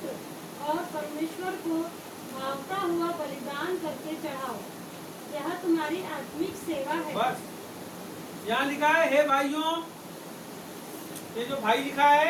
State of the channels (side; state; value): both; identical; correlation 1.00